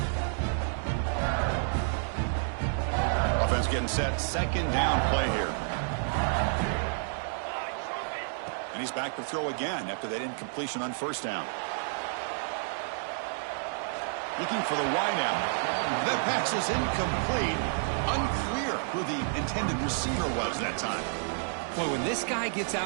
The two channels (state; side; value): silent; left; digital silence